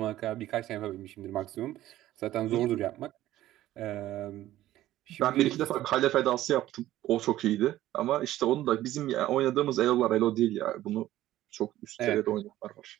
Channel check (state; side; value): quieter; left; 14.4 dB